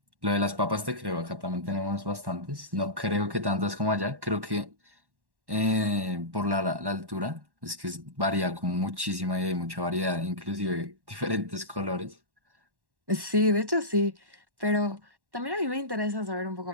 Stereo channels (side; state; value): left; late; 1.1 ms